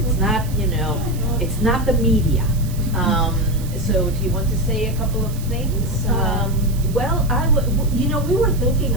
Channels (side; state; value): right; noise; hiss, 17 dB below the sound